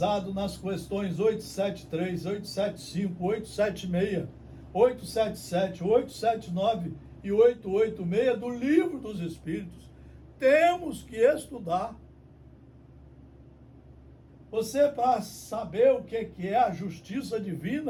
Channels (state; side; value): identical; both; correlation 1.00